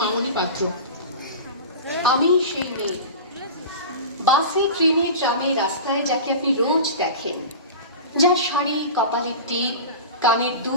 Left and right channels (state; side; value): inverted; both; correlation -0.30